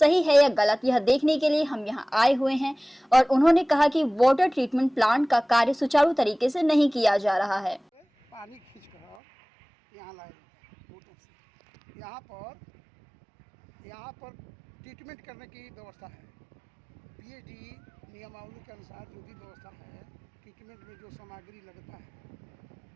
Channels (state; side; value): drops out; left; at 9.2 s